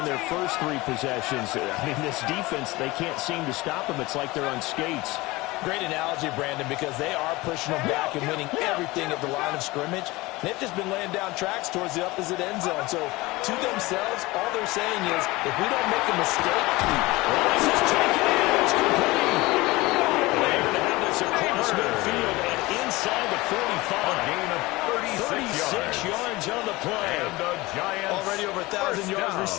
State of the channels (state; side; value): quieter; right; 21.1 dB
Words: their first 3 possessions. I mean, this defense, they can't seem to stop them. It's like they're on skates. Great analogy, Brandon, because they are pushing them back and winning everything at the line of scrimmage. They've just been laying down tracks towards the opposite end zone. So to themselves, all they're saying is, if we don't make a mistake, this is taken in. It's complete. They're going to have this across midfield and inside the 45. A gain of 36 yards on the play. And the Giants already over 1,000 yards down.